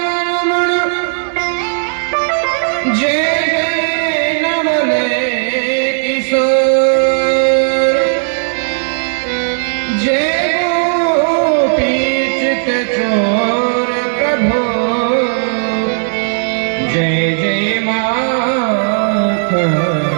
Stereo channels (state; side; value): silent; left; digital silence